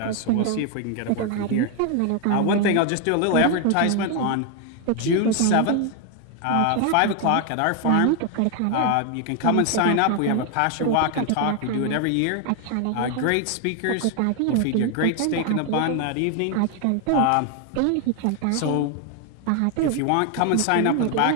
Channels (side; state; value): both; different; correlation 0.01